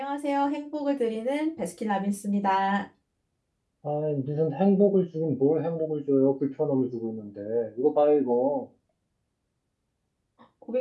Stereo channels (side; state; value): both; identical; correlation 1.00